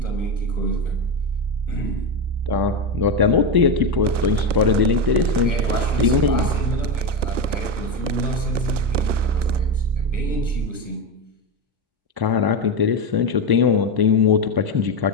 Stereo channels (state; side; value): late; left; 1.0 ms